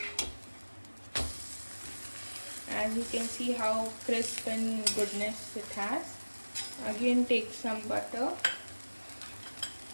As you can see how crisp and goodness it has. Again take some butter.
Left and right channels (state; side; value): inverted; both; correlation -1.00